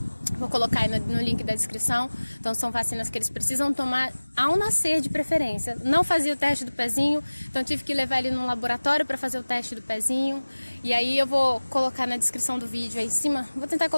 Vou colocar aí no link da descrição. Então são vacinas que eles precisam tomar ao nascer, de preferência. Não fazia o teste do pezinho, então tive que levar ele no laboratório para fazer o teste do pezinho. E aí eu vou colocar na descrição do vídeo aí em cima, vou tentar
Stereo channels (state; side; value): inverted; both; correlation -1.00